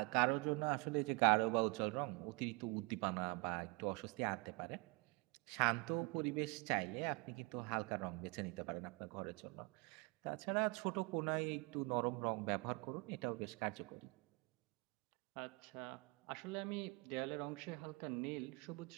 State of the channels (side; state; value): left; quieter; 28.6 dB